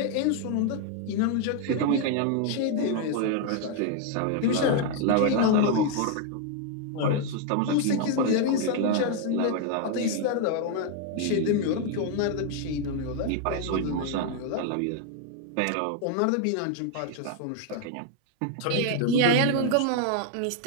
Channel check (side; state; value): both; different; correlation 0.00